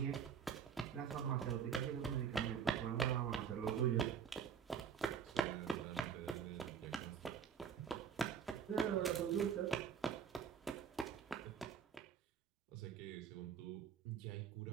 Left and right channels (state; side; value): quieter; left; 7.4 dB